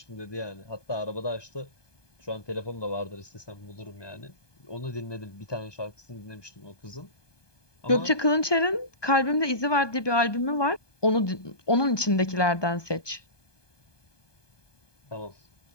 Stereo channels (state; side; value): late; right; 1.2 ms